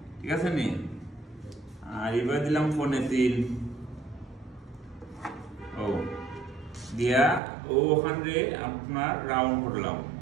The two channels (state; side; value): drops out; left; at 7.4 s